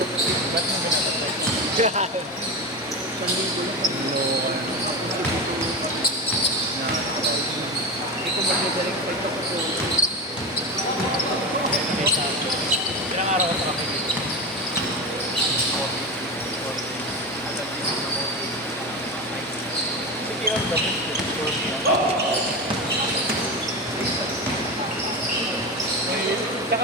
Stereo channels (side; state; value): both; normal; correlation 0.21